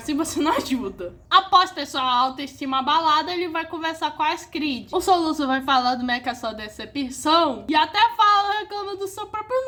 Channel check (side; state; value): both; identical; correlation 1.00